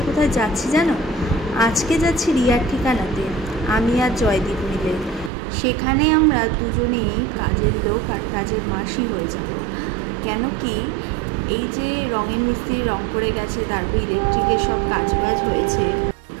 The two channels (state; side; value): drops out; left; at 5.3 s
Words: কোথায় যাচ্ছি জানো? আজকে যাচ্ছি রিয়ার ঠিকানাতে, আমি আর জয়দীপ মিলে। সেখানে আমরা দুজনেই কাজের লোক আর কাজের মাসি হয়ে যাব। কেন কি এই যে রঙের মিস্ত্রি রং করে গেছে, তারপর ইলেকট্রিকের সব কাজবাজ